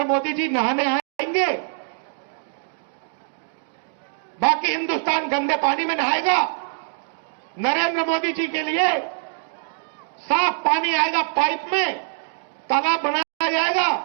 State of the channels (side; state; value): left; silent; digital silence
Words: मोदी जी नहाने आएंगे, बाकी हिंदुस्तान गंदे पानी में नहाएगा। नरेंद्र मोदी जी के लिए साफ पानी आएगा पाइप में, तालाब बनाया